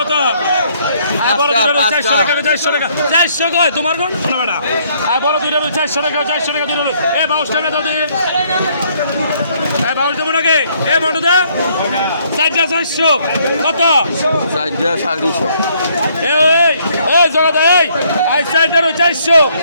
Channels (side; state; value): both; inverted; correlation -0.66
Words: আয় বড় 400 টাকা 400 টাকা 400 কয় তোমার কোন না বেটা আয় বড় 400 টাকা 400 টাকা এ 22 টাকা দাও দিন এ 22 দেব নাকি এ বড় দে 400 কত 450 এই এই জগদা এই আই সাইডার 400